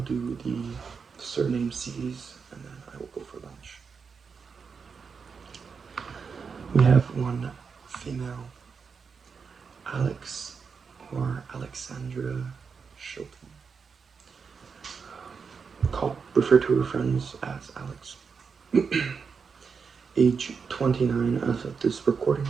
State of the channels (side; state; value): left; quieter; 5.7 dB